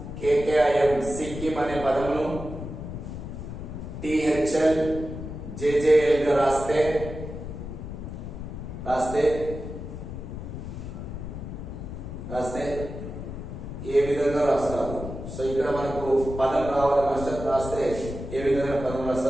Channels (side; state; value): left; noise; rumble, 8 dB below the sound